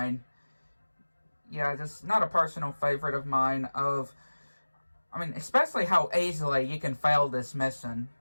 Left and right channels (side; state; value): both; inverted; correlation -1.00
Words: Yeah, just not a personal favorite of mine I mean, especially how easily you can fail this mission.